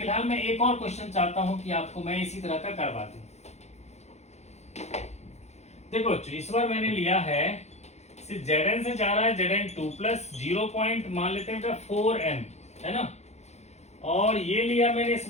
मैं एक और क्वेश्चन चाहता हूं कि आपको मैं इसी तरह का करवा दूं। देखो बच्चों इस बार मैंने लिया है Zn से जा रहा है Zn2 प्लस 0 मान लेते हैं बेटा 4m, है ना, और ये लिया मैंने इस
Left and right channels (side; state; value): right; late; 0.32 ms